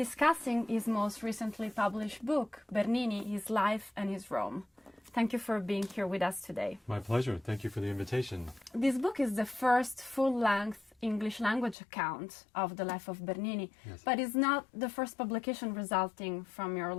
his most recently published book, Bernini, His Life and His Rome. Thank you for being here with us today. My pleasure. Thank you for the invitation. This book is the first full-length English language account of the life of Bernini, Yes. but it's not the first publication resulting from your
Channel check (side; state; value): right; drops out; at 11.8 s